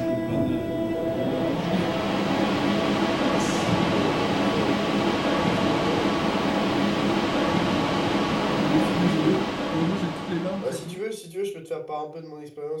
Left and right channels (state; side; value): identical; both; correlation 1.00